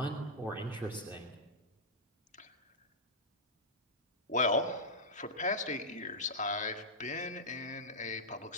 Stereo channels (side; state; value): both; normal; correlation -0.09